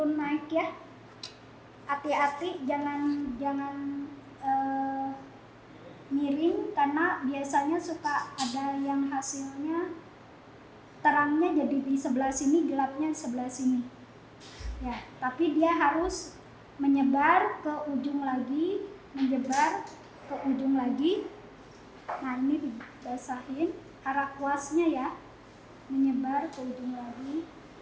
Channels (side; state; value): both; identical; correlation 1.00